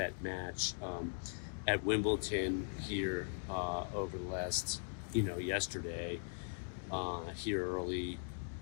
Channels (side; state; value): right; silent; digital silence